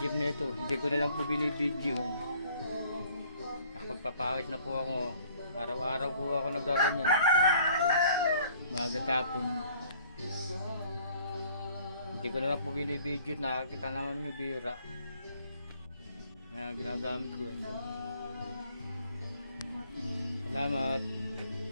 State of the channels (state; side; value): inverted; both; correlation -0.58